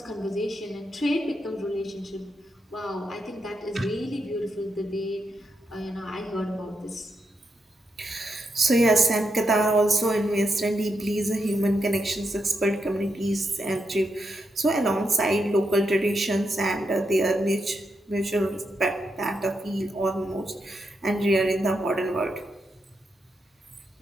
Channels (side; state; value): both; normal; correlation 0.83